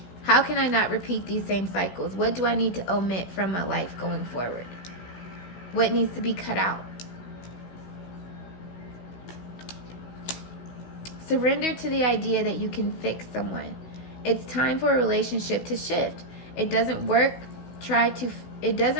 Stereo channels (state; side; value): late; right; 16 ms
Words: How can I not repeat these same cycles? What do I need to omit from my life going forward? What needs to be cut out? Surrender to the idea that you can fix someone. It's time for a relationship to shift. It doesn't work to try